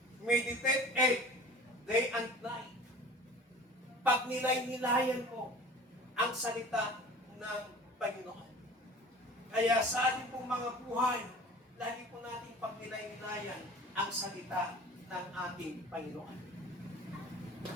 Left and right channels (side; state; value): both; normal; correlation 0.42